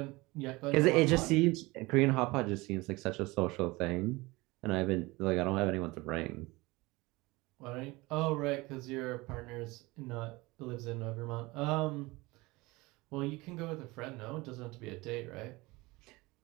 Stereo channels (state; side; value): quieter; left; 22.3 dB